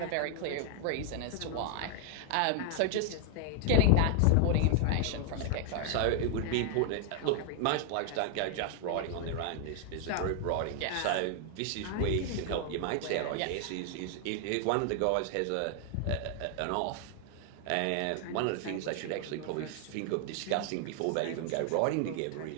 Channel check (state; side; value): different; both; correlation 0.00